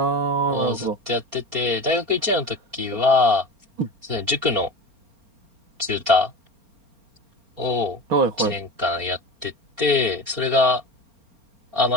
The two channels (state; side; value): late; left; 4.3 ms